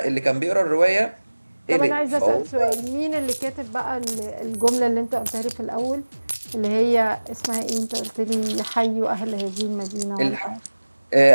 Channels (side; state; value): both; inverted; correlation -1.00